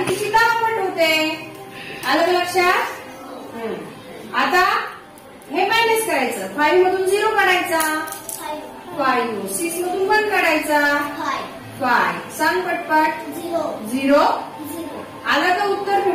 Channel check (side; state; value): both; identical; correlation 1.00